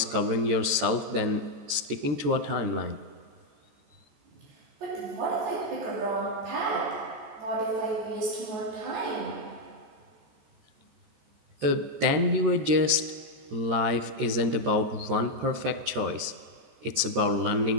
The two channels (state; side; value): late; left; 13 ms